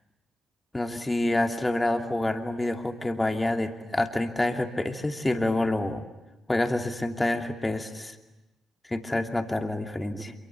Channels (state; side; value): normal; both; correlation 0.96